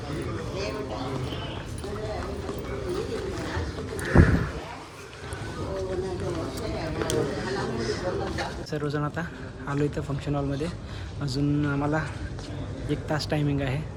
सर्वजण आता आलो इथं फंक्शन हॉलमध्ये अजून आम्हाला 1 तास टायमिंग आहे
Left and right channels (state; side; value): identical; both; correlation 1.00